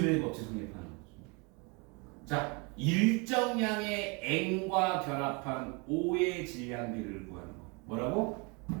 법칙 성립하는 거죠. 자, 일정량의 N과 결합한 O의 질량비를 구하는 거. 뭐라고?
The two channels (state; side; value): quieter; left; 30.4 dB